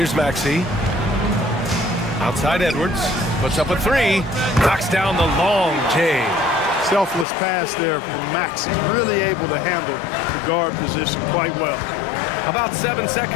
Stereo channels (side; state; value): right; drops out; at 7.2 s